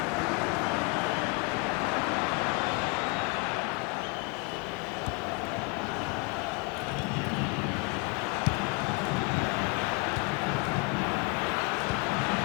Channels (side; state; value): right; quieter; 30.3 dB